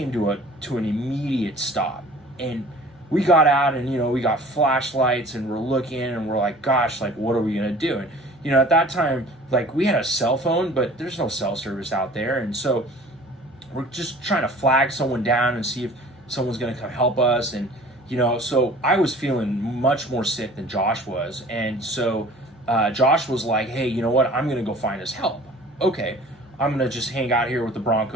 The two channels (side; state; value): both; normal; correlation 0.47